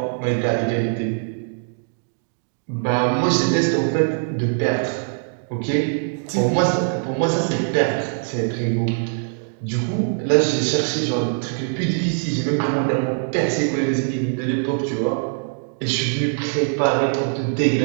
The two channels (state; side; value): silent; left; 64 dB below the other